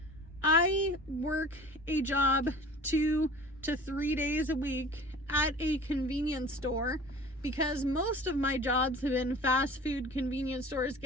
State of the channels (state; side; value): normal; both; correlation 0.42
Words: I work a job 2 to 3 days a week at a convenience store because most of my jobs have been fast food, convenience stores,